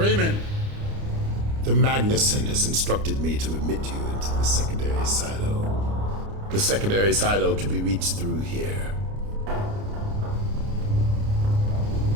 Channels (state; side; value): late; left; 29 ms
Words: The Magnuson has instructed me to admit you into the secondary silo. The secondary silo can be reached through here.